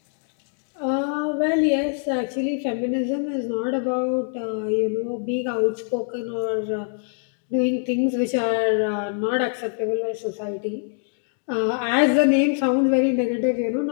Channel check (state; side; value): silent; right; 62 dB below the other